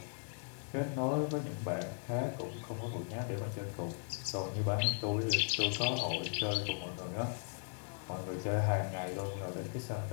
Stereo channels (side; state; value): right; silent; 53 dB below the other